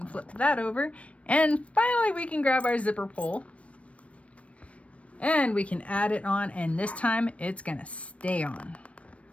flip that over. And finally we can grab our zipper pull. And we can add it on, and this time it's gonna stay on.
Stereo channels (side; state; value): right; late; 0.063 ms